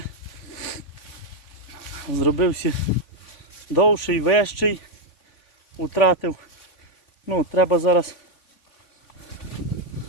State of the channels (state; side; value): late; right; 3.5 ms